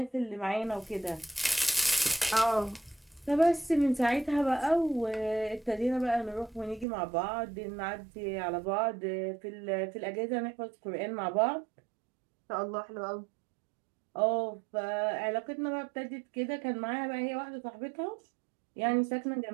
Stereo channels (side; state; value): left; drops out; at 6.9 s